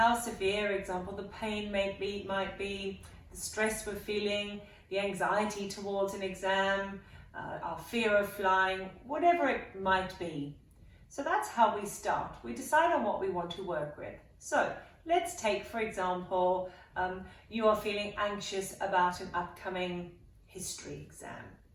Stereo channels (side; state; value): both; identical; correlation 1.00